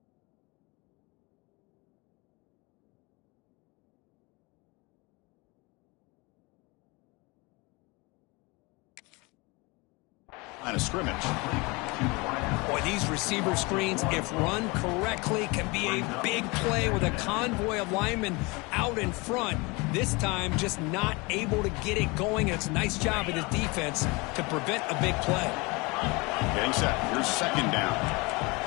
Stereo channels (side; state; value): right; quieter; 26.3 dB